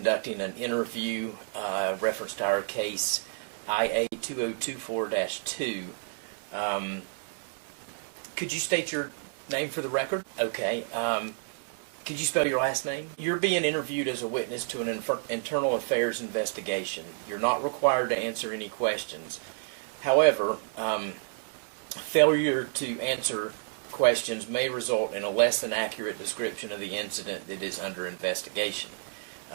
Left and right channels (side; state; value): left; silent; digital silence